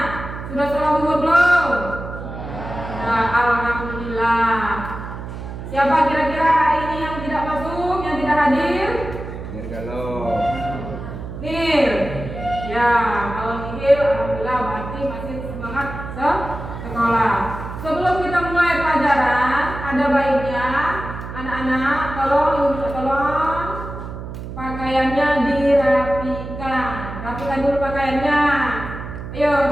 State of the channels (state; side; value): noise; right; hum, 9 dB below the sound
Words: sudah sholat zuhur belum? Nah, alhamdulillah. Siapa kira-kira hari ini yang tidak masuk, yang tidak hadir? Kalau Nir. Ya, kalau Nir, alhamdulillah berarti masih semangat sekolah. Sebelum kita mulai pelajaran, ada baiknya anak-anak tolong pakaiannya dirapikan. Rapikan dulu pakaiannya. Ayo,